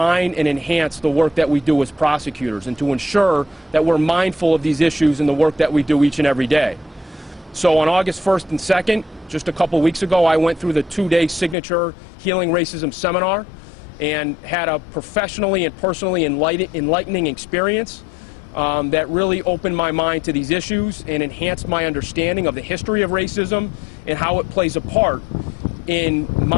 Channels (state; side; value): drops out; right; at 11.6 s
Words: and enhance the work that we do as prosecutors and to ensure that we're mindful of these issues in the work that we do each and every day. So on August 1st and 2nd, just a couple weeks ago, I went through the 2-day signature Healing Racism seminar and had a professionally and personally enlightening experience that really opened my mind to these issues and enhanced my understanding of the history of racism and how it plays a part in